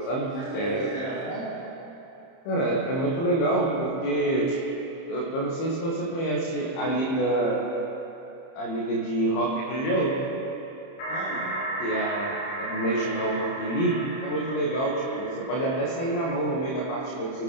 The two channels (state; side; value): late; right; 30 ms